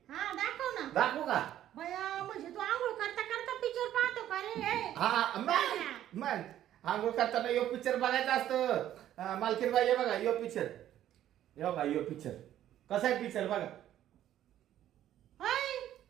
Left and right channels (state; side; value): quieter; left; 12.0 dB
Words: हा दाखव ना. दाखवू का. बया म्हणजे तू आंघोळ करता करता पिक्चर पाहतो का रे. हा मग आंघोळ करताना यो पिक्चर बघायचा असतो. मालकीन बाई बघा यो पिक्चर. यो बघा यो पिक्चर कसा आहे पिक्चर बघा. होय